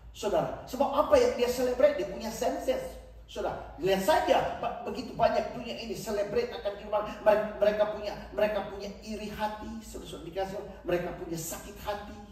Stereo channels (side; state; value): both; identical; correlation 1.00